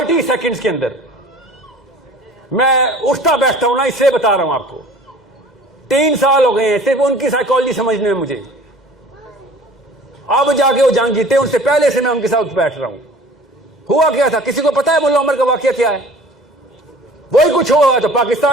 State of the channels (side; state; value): both; normal; correlation 0.46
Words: سیکنڈز کے اندر. میں اٹھتا بیٹھتا ہوں نا، اس سے بتا رہا ہوں آپ کو. 3 سال ہو گئے ہیں صرف ان کی سائیکالوجی سمجھنے میں. مجھے اب جا کے وہ جنگ جیتے، ان سے پہلے سے میں ان کے ساتھ بیٹھ رہا ہوں. ہوا کیا تھا کسی کو پتا ہے؟ ملا عمر کا واقعہ کیا ہے؟ وہی کچھ ہوا تو